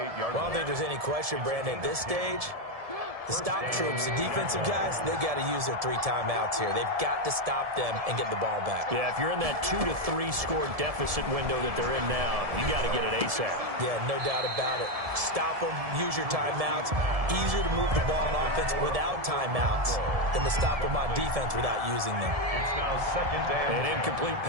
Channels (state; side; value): late; left; 1.7 ms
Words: don't think there's any question, Brandon, at this stage, the stop troops, the defensive guys, they got to use their 3 timeouts here. They've got to stop them and get the ball back. Yeah, if you're in that 2 to 3 score deficit window that they're in now, you got to get it ASAP. Yeah, no doubt about it. Stop them, use your timeouts. Easier to move the ball on offense without timeouts than to stop them on defense without using them. It's now second down. An incomplete